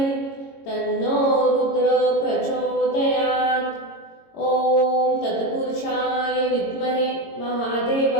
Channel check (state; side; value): late; right; 22 ms